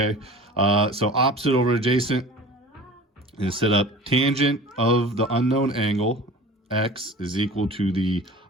So opposite over adjacent, and set up tangent of the unknown angle, x, is equal to the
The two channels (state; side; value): normal; both; correlation 0.39